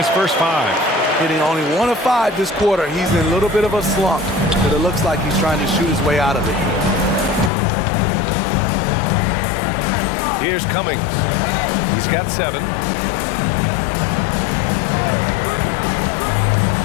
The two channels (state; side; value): drops out; right; at 7.5 s